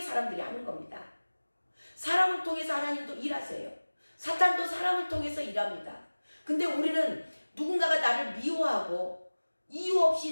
사람들이 하는 겁니다. 사람을 통해서 하나님도 일하세요. 사탄도 사람을 통해서 일합니다. 근데 우리는 누군가가 나를 미워하고 이유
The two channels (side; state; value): both; inverted; correlation -1.00